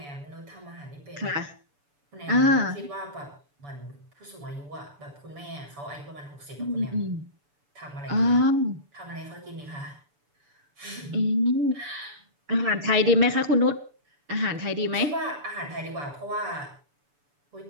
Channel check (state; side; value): late; left; 7.0 ms